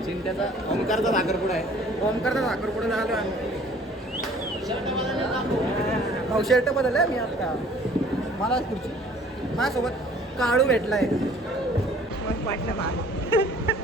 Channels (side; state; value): both; normal; correlation 0.53